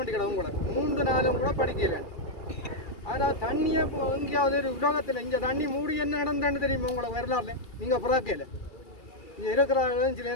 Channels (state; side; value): late; right; 2.3 ms